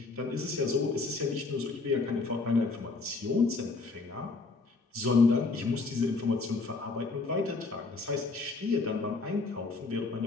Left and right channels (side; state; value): right; quieter; 3.9 dB